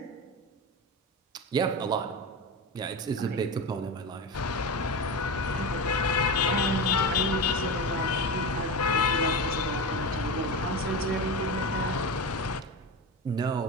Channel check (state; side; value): normal; both; correlation 0.23